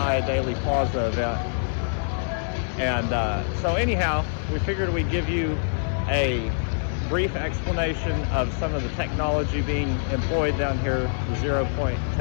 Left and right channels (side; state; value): right; silent; 58 dB below the other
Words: Daily Plaza event. And so anyhow, we figured we'd give you a brief explanation of some of the technology being employed down here, the 0 Point